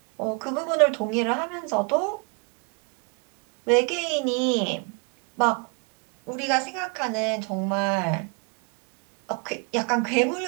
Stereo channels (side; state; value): left; quieter; 35.1 dB